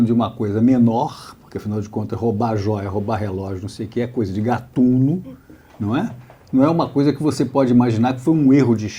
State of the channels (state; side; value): identical; both; correlation 1.00